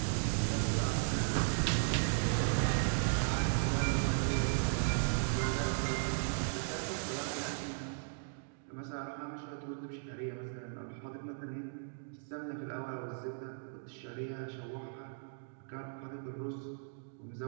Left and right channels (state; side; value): silent; left; digital silence